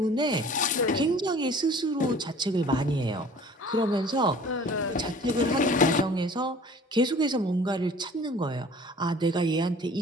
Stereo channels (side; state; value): both; normal; correlation 0.48